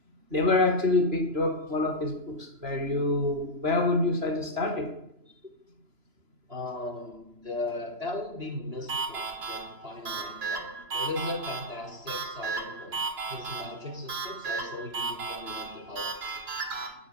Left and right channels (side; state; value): left; late; 3.0 ms